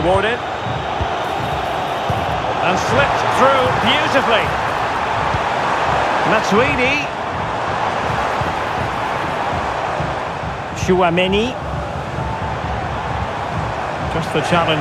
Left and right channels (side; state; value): both; identical; correlation 1.00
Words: And slipped through beautifully. Matuidi. Chouameni. Just the